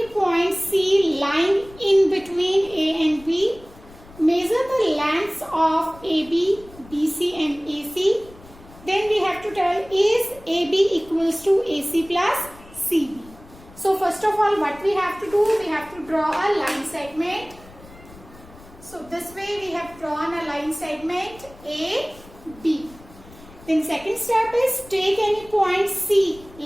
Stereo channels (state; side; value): noise; left; rumble, 21 dB below the sound